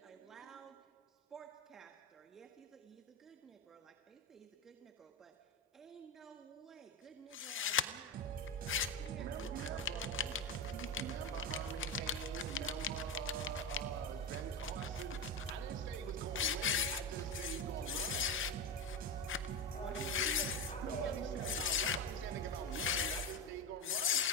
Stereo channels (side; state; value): both; normal; correlation 0.17